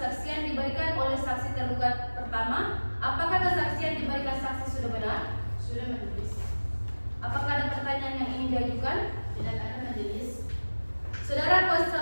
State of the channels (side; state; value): both; inverted; correlation -1.00